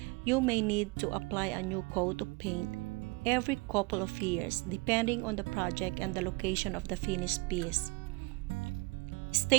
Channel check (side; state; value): left; quieter; 26.7 dB